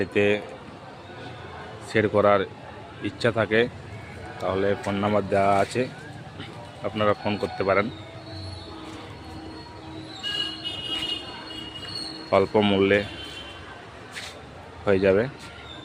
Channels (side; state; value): both; identical; correlation 1.00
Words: শেড করার ইচ্ছা থাকে তাহলে ফোন নাম্বার দেওয়া আছে, আপনারা ফোন করতে পারেন। অল্প মূল্যে হয়ে যাবে।